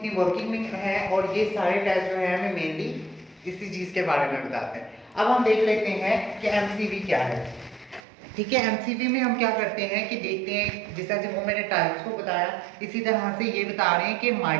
वर्किंग में है, और ये सारे टेस्ट जो है हमें मेनली इसी चीज के बारे में बताते हैं। अब हम देख लेते हैं कि एमसीवी क्या है, ठीक है। एमसीवी में हम क्या करते हैं कि देखते हैं, जैसा जब वो मैंने टाइप्स को बताया, इसी तरह से ये बता रहे हैं कि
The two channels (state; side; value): drops out; left; at 8.0 s